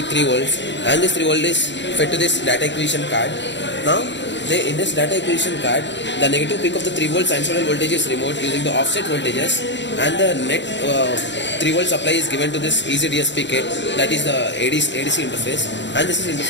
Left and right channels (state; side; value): late; right; 0.52 ms